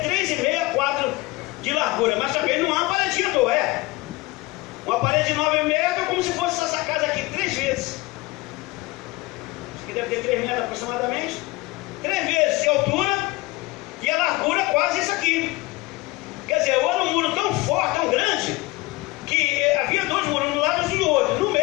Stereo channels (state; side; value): quieter; right; 21.8 dB